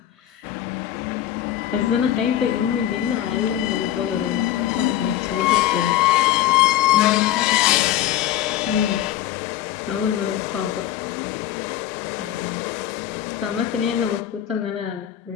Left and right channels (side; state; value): right; quieter; 12.2 dB